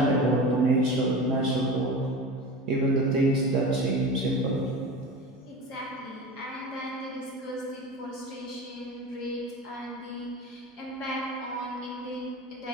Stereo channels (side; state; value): both; normal; correlation 0.30